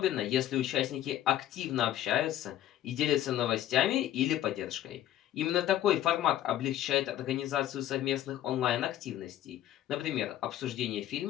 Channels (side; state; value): right; quieter; 12.5 dB